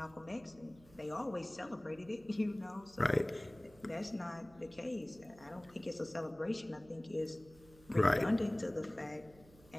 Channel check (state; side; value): noise; right; hum, 24 dB below the sound